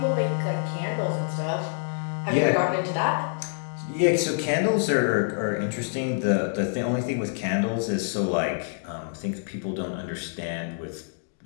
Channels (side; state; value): right; silent; digital silence